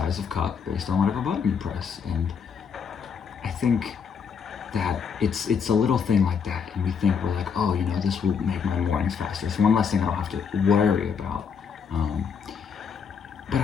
of cup based on whatever button you press. And I think that it's a little thing like that, and we think we're like, oh, this will make my mornings faster. It's one less thing I don't have to worry about. But I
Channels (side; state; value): right; quieter; 6.5 dB